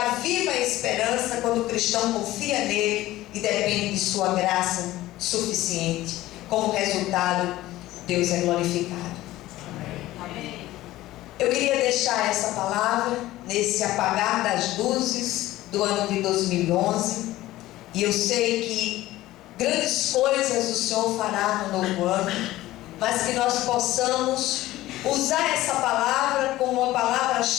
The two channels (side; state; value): right; quieter; 16.3 dB